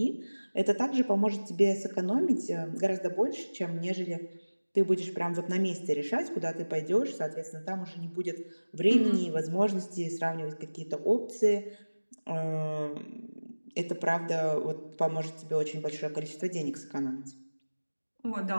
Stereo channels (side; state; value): both; inverted; correlation -1.00